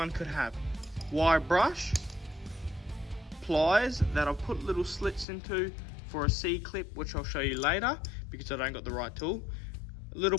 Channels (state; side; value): drops out; right; at 5.2 s